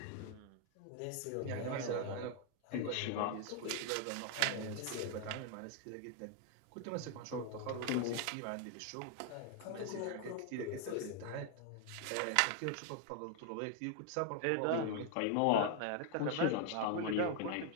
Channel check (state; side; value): different; both; correlation 0.00